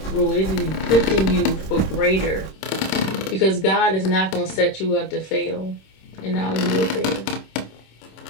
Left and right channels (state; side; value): late; right; 26 ms